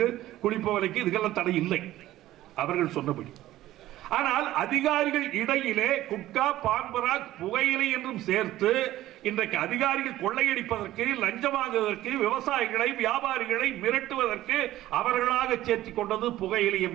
குழி புகையிலைக்கு இதுக்கெல்லாம் தடை இல்லை அவர்கள் சொன்னபடி. ஆனால் அதிகாரிகள் இடையிலே குட்கா, பான்பராக், புகையிலை என்றும் சேர்த்து இன்றைக்கு அதிகாரிகள் கொள்ளையடிப்பதற்கு, லஞ்சம் வாங்குவதற்கு, விவசாயிகளை, வியாபாரிகளை மிரட்டுவதற்கு அவர்களாக சேர்த்து கொண்டது புகையிலை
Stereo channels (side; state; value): left; quieter; 14.8 dB